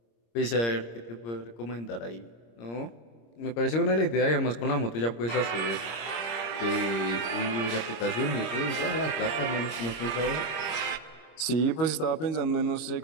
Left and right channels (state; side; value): late; right; 26 ms